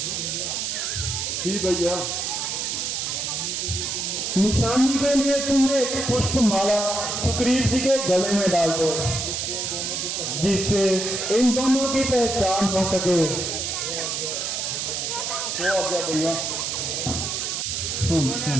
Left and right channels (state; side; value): noise; right; hiss, 2 dB below the sound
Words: जी भैया, निशानी के लिए तुमने एक पुष्प माला सुग्रीव जी के गले में डाल दो, जिससे इन दोनों की पहचान हो सके। वो आ गया भैया।